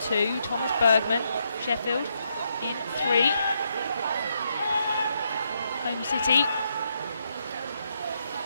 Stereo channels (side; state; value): both; inverted; correlation -0.79